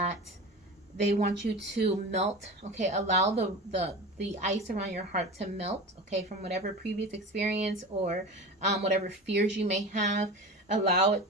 they want you to melt. Okay, allow the ice around your heart to melt. Okay, from whatever previous experience or whatever fears you may have. Allow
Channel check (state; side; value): normal; both; correlation 0.31